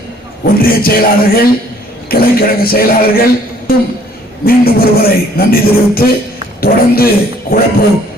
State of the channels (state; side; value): normal; both; correlation 0.59